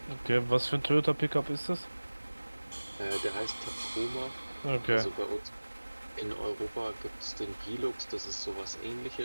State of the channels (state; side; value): inverted; both; correlation -1.00